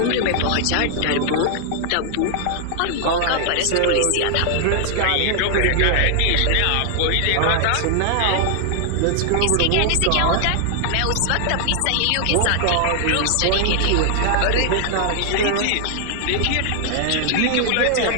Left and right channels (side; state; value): both; different; correlation 0.00